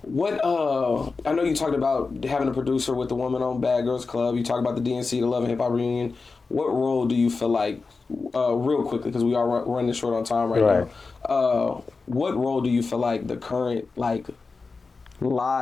what I know you talked about having a producer with the Woman on Bad Girls Club. You talked about the DNC, the Love and Hip Hop reunion. What role do you feel like, real quickly, because we are running short on time right now. What role do you feel like the current like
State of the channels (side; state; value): right; quieter; 4.3 dB